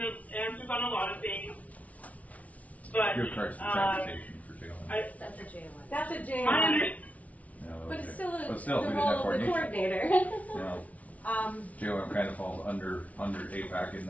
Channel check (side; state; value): right; late; 0.069 ms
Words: answers on a lot of things. But Gift cards for transportation for jail. That's a JLM. That's a I JLM. understand. But it's still, But still, the we didn't role have of the coordination. coordinator. JLM kind of falls under AIPAC in